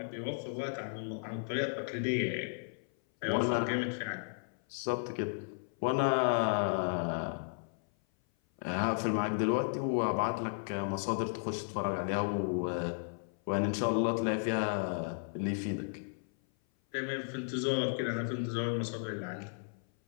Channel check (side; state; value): right; silent; 55 dB below the other